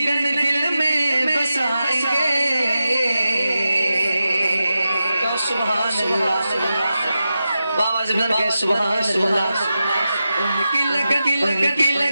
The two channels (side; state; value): both; inverted; correlation -0.91